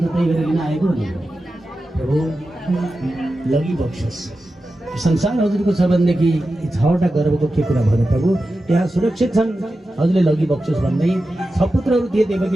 त्यही गरेर लिन आएको हो। प्रभु लगी बक्सोस्। संसार हजुरको छ भनेदेखि 6वटा गर्भको के कुरा भयो प्रभु? यहाँ सुरक्षित छन्, हजुरले लगी बक्सोस् भन्दै 6 पुत्रहरू थिए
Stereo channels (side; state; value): both; normal; correlation 0.92